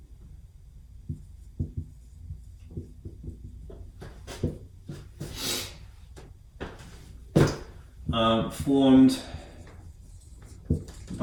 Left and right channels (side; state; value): both; identical; correlation 1.00